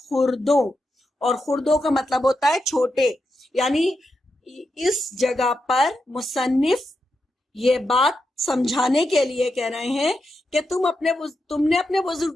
اور خردوں کا مطلب ہوتا ہے چھوٹے. یعنی اس جگہ پر مصنف یہ بات سمجھانے کے لیے کہہ رہے ہیں کہ تم نے اپنے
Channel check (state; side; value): normal; both; correlation 0.86